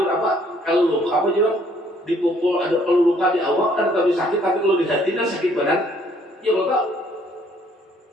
apa? Kalau luka apa juga dipukul ada kalau luka di awal kan tapi sakit, tapi kalau di hati kan sakit badan. Ya betul.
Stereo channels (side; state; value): both; normal; correlation 0.63